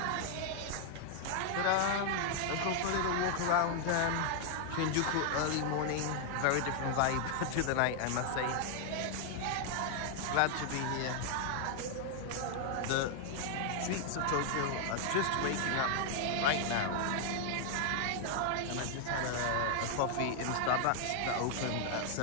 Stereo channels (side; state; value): both; different; correlation 0.00